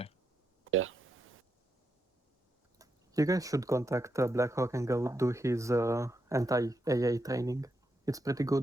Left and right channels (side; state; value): both; normal; correlation 0.83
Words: Yeah. You guys should contact Blackhawk and go do his anti-AA training. It's pretty